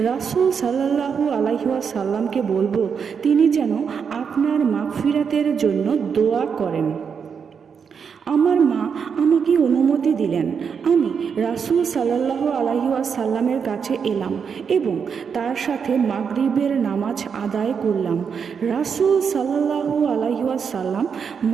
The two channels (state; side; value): quieter; left; 6.5 dB